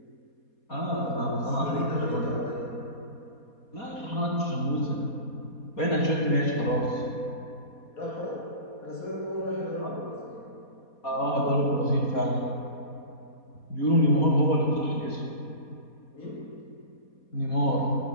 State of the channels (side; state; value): right; late; 4.2 ms